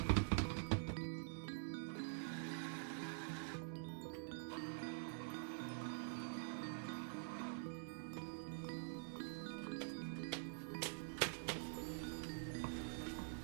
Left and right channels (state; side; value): silent; left; digital silence